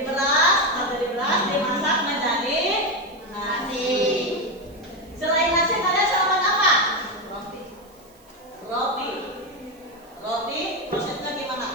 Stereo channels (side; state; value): right; noise; hiss, 29 dB below the sound